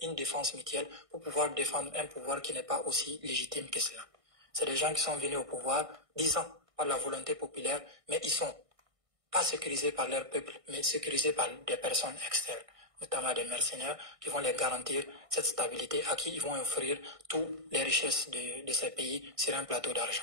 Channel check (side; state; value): left; late; 1.6 ms